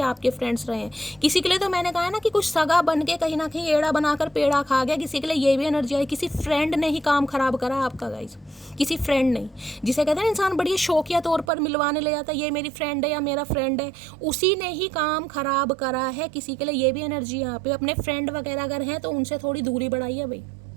आपके फ्रेंड्स रहे हैं। किसी के लिए तो मैंने कहा है ना कि कुछ सगा बन के कहीं ना कहीं एड़ा बनाकर पेड़ा खा गया। किसी के लिए ये भी एनर्जी आई, किसी फ्रेंड ने ही काम खराब करा आपका गाइस, किसी फ्रेंड ने, जिसे कहते हैं ना इंसान बढ़िया शौकिया तौर पर मिलवाने ले जाता है, ये मेरी फ्रेंड है या मेरा फ्रेंड है, उसी ने ही काम खराब करा है। किसी के लिए ये भी एनर्जी यहाँ पे, अपने फ्रेंड वगैरह अगर हैं तो उनसे थोड़ी दूरी बढ़ाइए भाई।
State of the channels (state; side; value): drops out; left; at 11.5 s